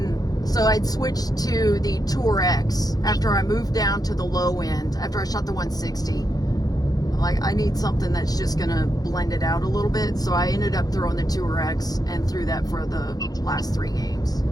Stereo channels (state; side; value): late; right; 0.18 ms